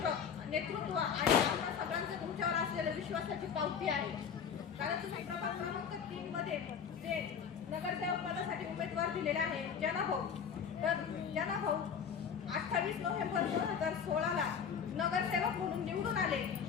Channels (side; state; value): right; quieter; 7.1 dB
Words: आणि आम्हा सगळ्यांचं तुमच्यावर असलेल्या विश्वासाची पावती आहे. कारण तुम्ही प्रभाग क्रमांक 3 मध्ये जे नगरसेवक पदासाठी उमेदवार दिलेला आहे जनाभाऊ, तर जनाभाऊ 28 नोव्हेंबर 2016ला नगरसेवक म्हणून निवडून आले